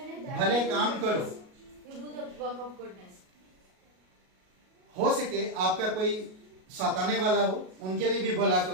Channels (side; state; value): left; late; 38 ms